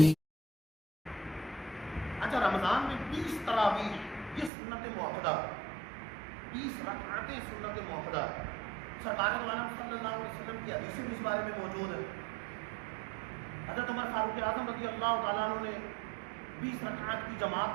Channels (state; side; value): drops out; left; at 4.5 s